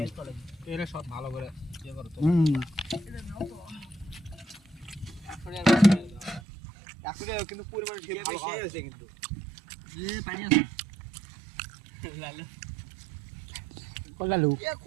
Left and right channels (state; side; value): drops out; left; at 6.4 s